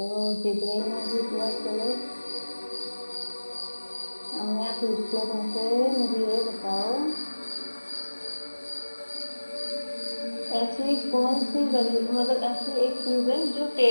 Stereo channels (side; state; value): both; inverted; correlation -1.00